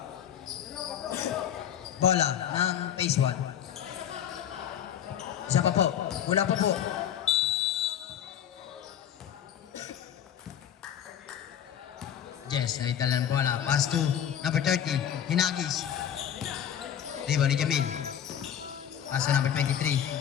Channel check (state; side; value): quieter; right; 9.5 dB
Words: Bola ng phase 1. Isa pa po. Wala pa po. Yes, naitala ng bola. Pass to number 30. Hinagis. Diba ni Jamil. Pass to number 23.